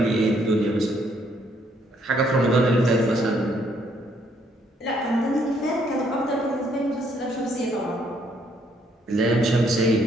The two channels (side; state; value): both; normal; correlation 0.69